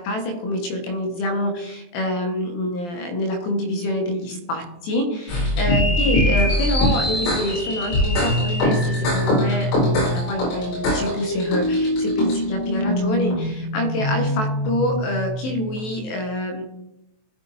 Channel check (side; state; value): right; late; 23 ms